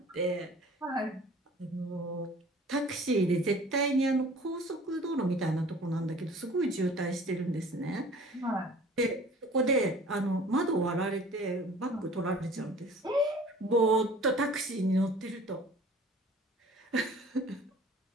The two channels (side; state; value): both; normal; correlation 0.48